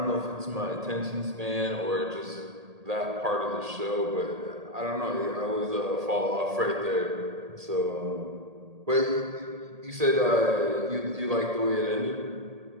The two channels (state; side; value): late; left; 1.8 ms